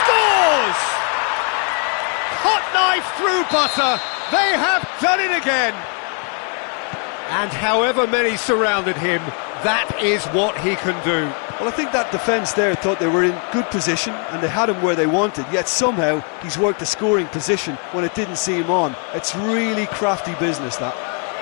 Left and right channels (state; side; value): quieter; right; 39.7 dB